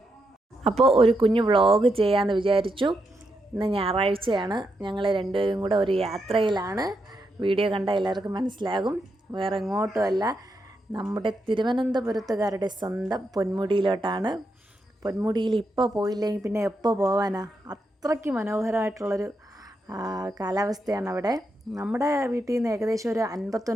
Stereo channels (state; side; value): normal; both; correlation 0.83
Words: അപ്പോൾ ഒരു കുഞ്ഞു വ്ളോഗ് ചെയ്യാമെന്ന് വിചാരിച്ചു. ഇന്ന് ഞായറാഴ്ചയാണ്, ഞങ്ങൾ രണ്ടുപേരും കൂടെ ഒരു യാത്രയിലാണ്. വീഡിയോ കണ്ടാൽ എല്ലാവർക്കും മനസ്സിലാകും, വേറെ എങ്ങോട്ടുമല്ല, നമ്മുടെ തിരുവനന്തപുരത്തുകാരുടെ സ്വന്തം പൊന്മുടിയിലോട്ടാണ്. പൊന്മുടിയിൽ ഇപ്പോൾ പോയില്ലെങ്കിൽ പിന്നെ എപ്പോൾ പോകാനാ? അത്രയ്ക്ക് മനോഹരമായിട്ടുള്ളൊരു കാലാവസ്ഥയാണ് അവിടെ. നമ്മുടെ വീട്ടിൽ നിന്ന് ഏകദേശം ഒരു